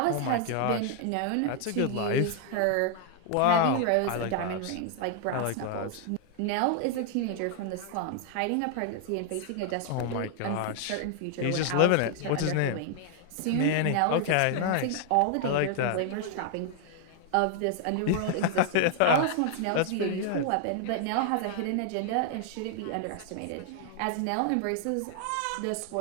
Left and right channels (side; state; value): both; different; correlation 0.00